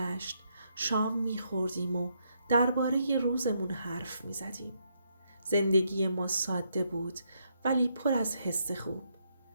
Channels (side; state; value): both; inverted; correlation -0.77